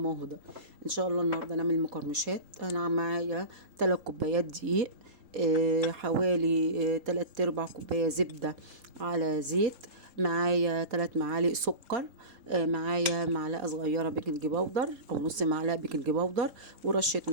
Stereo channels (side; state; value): left; late; 3.8 ms